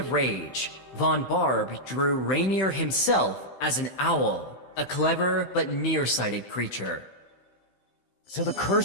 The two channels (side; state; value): right; late; 15 ms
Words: rage, Von Barb drew Rainier himself as an owl, a clever but nearsighted creature. So the